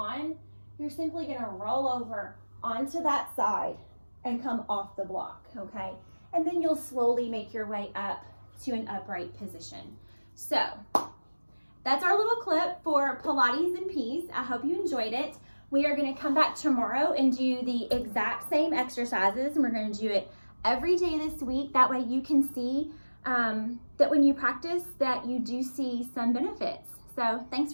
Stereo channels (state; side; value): inverted; both; correlation -1.00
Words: you're simply going to roll over onto that side and come off the block, okay? And then you'll slowly make your way up to an upright position. So that's our little clip for Pilates and Peace. I hope you enjoyed it. We are going to come back tomorrow and do the exact same exercises, and we're going to do it every day this week. That way you can see that when you practice that you do see some benefits. So thanks